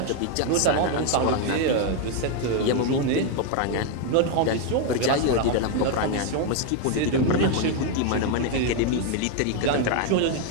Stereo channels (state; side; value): different; both; correlation 0.01